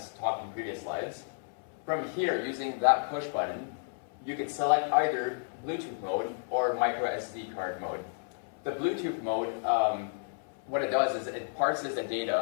talked in previous slides. From here, using that push button, you can select either Bluetooth mode or micro SD card mode. The Bluetooth mode, what it does is it parses the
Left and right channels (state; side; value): silent; right; 57 dB below the other